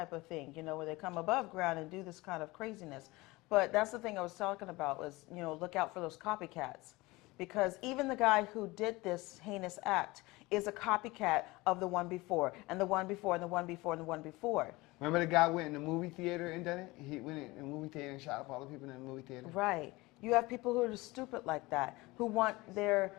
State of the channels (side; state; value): right; quieter; 21.7 dB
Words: of thing, you know, where they come above ground and do this kind of craziness. But that's the thing I was talking about was, you know, look out for those copycats. Because even the guy who did this heinous act is a copycat of the one before, and the one before, and the one before, and the one before. Remember the guy went in the movie theater and done it? He went in the movie theater and shot up all the people in the movie theater? Right. You have people who are stupid like that, who want their